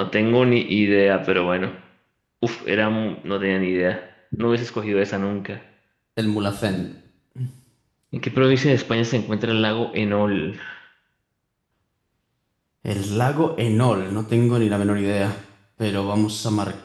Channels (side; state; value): both; identical; correlation 1.00